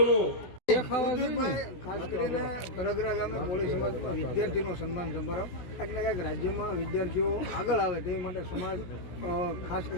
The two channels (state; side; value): late; right; 17 ms